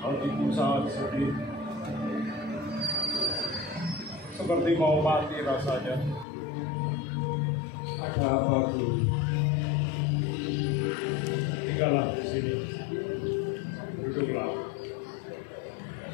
hatiku sangat sedih, seperti mau mati rasanya. Ada apa, Guru? Tinggallah di sini, duduklah.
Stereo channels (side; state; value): right; drops out; at 6.2 s